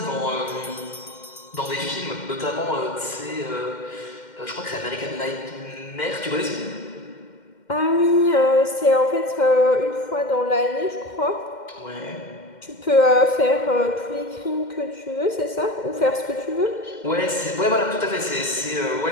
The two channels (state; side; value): late; right; 2.1 ms